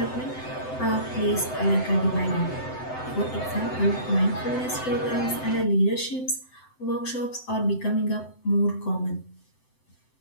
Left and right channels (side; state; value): right; late; 7.8 ms